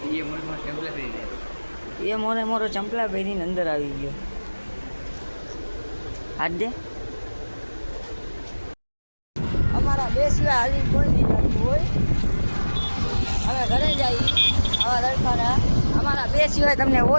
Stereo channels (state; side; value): inverted; both; correlation -1.00